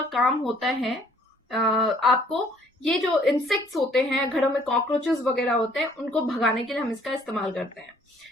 काम होता है आपको ये जो इंसेक्ट्स होते हैं घरों में, कॉकरोचेस वगैरह होते हैं, उनको भगाने के लिए हम इसका इस्तेमाल करते हैं।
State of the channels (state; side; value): normal; both; correlation 0.61